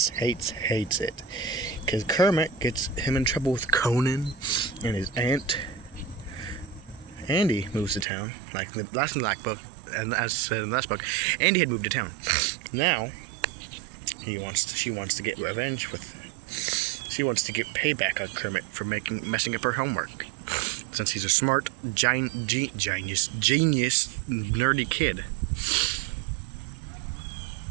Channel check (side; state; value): left; drops out; at 8.1 s